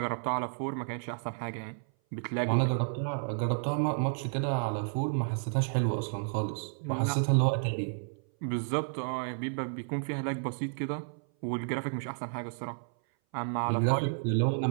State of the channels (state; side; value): silent; left; 57 dB below the other